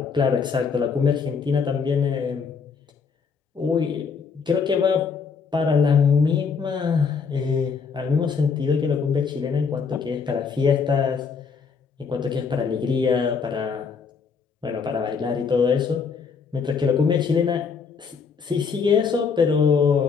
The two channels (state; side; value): quieter; right; 5.7 dB